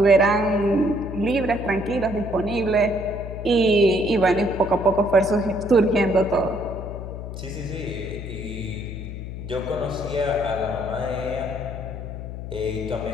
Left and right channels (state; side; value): noise; left; hum, 8 dB below the sound